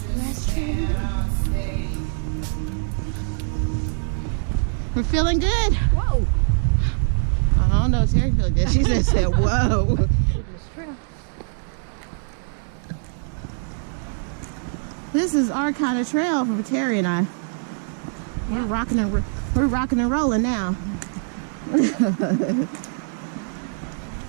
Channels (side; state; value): left; silent; 63 dB below the other